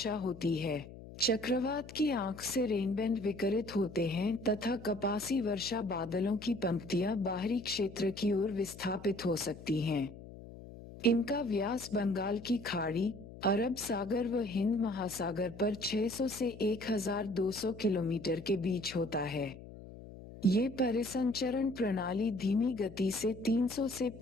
होती है। चक्रवात की आंख से रेनबैंड विकिरित होते हैं तथा कपासी वर्षा बादलों की पंक्तियां बाहरी क्षेत्र की ओर विस्थापित हो सकती हैं। इनका व्यास बंगाल की खाड़ी, अरब सागर व हिंद महासागर पर 600 से 1200 किलोमीटर के बीच होता है। ये परिसंचरण प्रणाली धीमी गति से 300 से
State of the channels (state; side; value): noise; left; hum, 15 dB below the sound